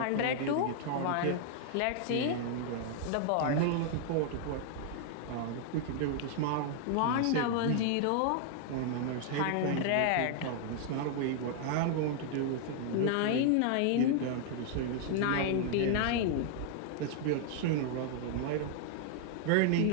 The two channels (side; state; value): both; different; correlation 0.00